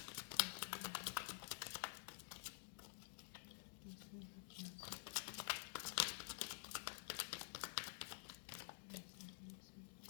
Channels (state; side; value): silent; right; digital silence